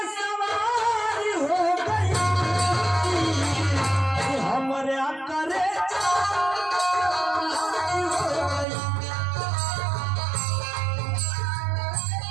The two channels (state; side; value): drops out; left; at 8.7 s